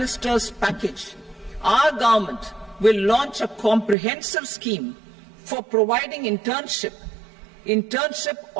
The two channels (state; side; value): drops out; left; at 4.0 s